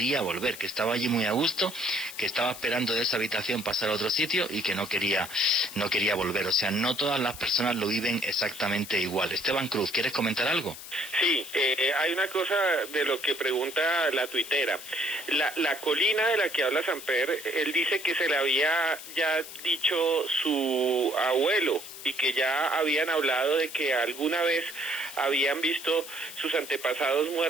volver, que estaba allí muy a gusto, que estaba esperando de esa habitación pasar a otro sitio y que no quería volver. O sea, no todas las personas lo viven exactamente igual. Esteban Cruz, ¿quieres comentar algo? Sí, hay una cosa de lo que pregunta la tuitera. La colina de la que habla Samper, él dice que se le había ya dicho su abuelo, y que ya habían hablado de que alguna vez habían visto sus antepasados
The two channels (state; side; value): noise; left; hiss, 13 dB below the sound